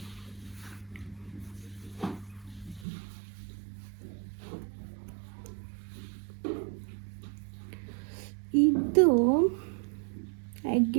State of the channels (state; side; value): drops out; left; at 2.9 s